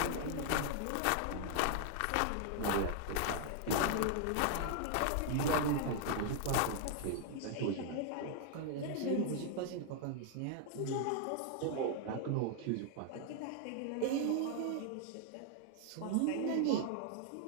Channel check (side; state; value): both; different; correlation -0.01